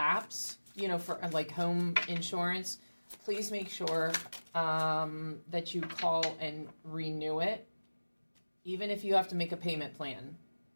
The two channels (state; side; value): inverted; both; correlation -1.00